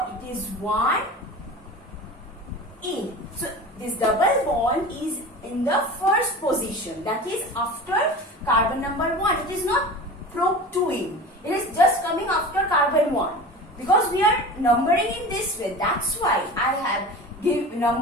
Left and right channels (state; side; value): normal; both; correlation 0.34